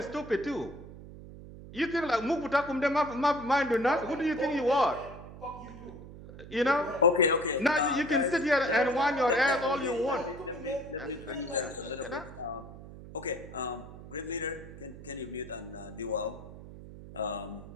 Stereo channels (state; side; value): noise; right; hum, 15 dB below the sound